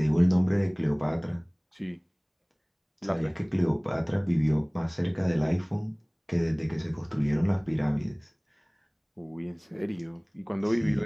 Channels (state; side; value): identical; both; correlation 1.00